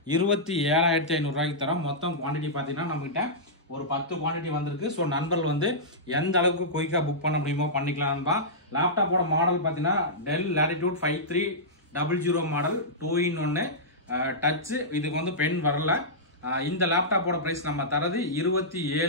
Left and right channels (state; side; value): normal; both; correlation -0.14